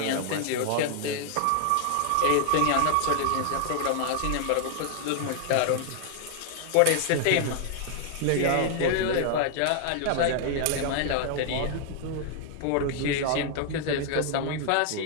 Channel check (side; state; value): both; different; correlation 0.00